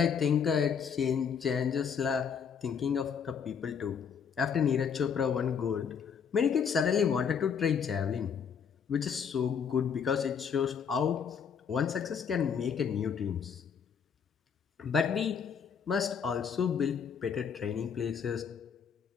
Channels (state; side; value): quieter; right; 7.0 dB